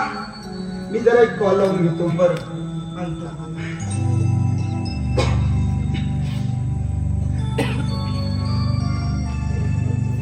मी जरा एक कॉल लावून घेतो. बरं आणतो.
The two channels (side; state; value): both; identical; correlation 1.00